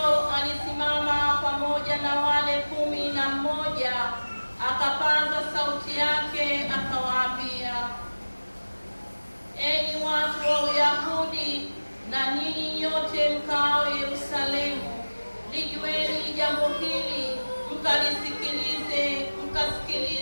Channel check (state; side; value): inverted; both; correlation -1.00